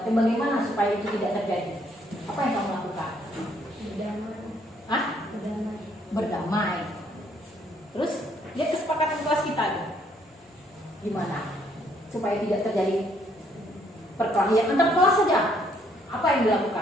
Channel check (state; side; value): normal; both; correlation 0.67